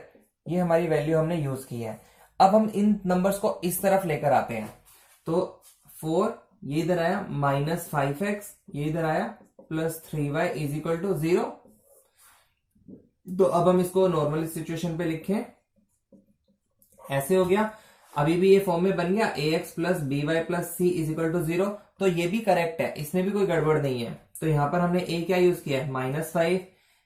ये हमारी वैल्यू हमने यूज की है। अब हम इन नंबर्स को इस तरफ लेकर आते हैं, तो 4 ये इधर आया, -5x ये इधर आया, plus 3y is equal to 0। तो अब हम इसको नॉर्मल सिचुएशन पे लिखें, ऐसे हो गया। अभी भी ये फॉर्म में बन गया, ax plus by plus c is equal to 0। तो ये भी करेक्ट है, इसमें भी कोई गड़बड़ नहीं है। तो यहां पर हमने a क्या यूज किया है -5,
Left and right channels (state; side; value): identical; both; correlation 1.00